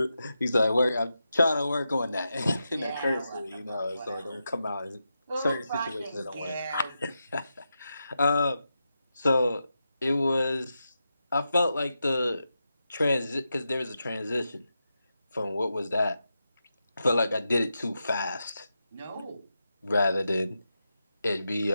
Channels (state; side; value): inverted; both; correlation -0.88